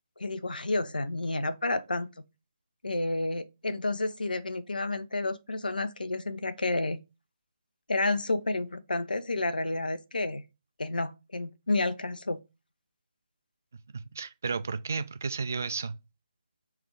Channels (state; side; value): inverted; both; correlation -0.85